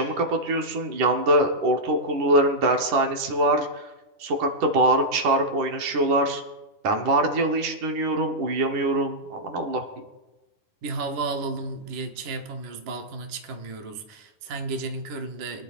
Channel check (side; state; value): left; late; 10 ms